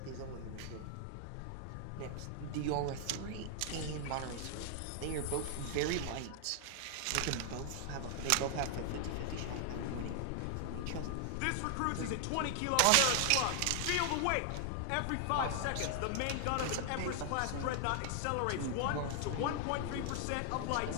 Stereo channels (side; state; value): both; different; correlation 0.00